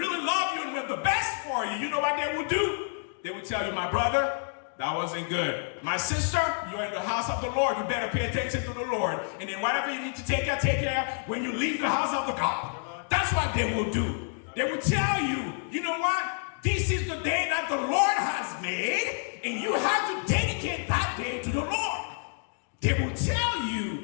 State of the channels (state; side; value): silent; right; 59 dB below the other